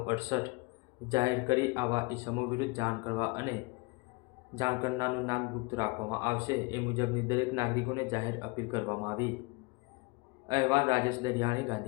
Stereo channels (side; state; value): right; quieter; 27.7 dB